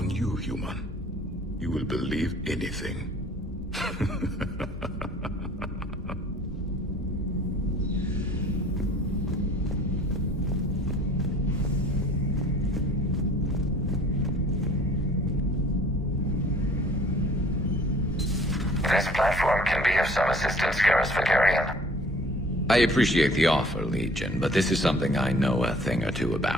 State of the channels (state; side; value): normal; both; correlation 0.51